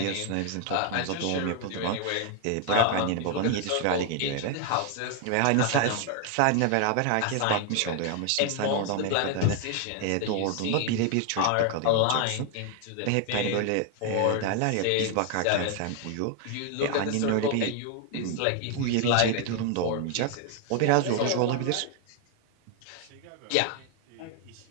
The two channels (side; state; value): both; different; correlation 0.00